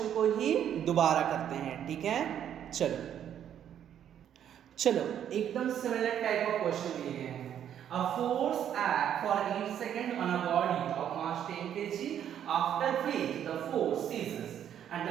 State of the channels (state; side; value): quieter; left; 9.8 dB